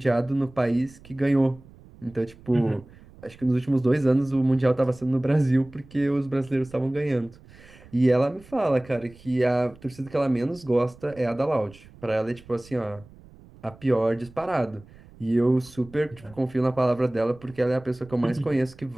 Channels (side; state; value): right; noise; rumble, 23 dB below the sound